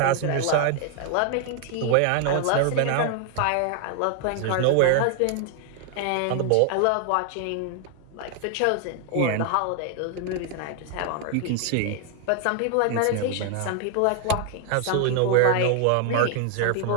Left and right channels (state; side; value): different; both; correlation 0.00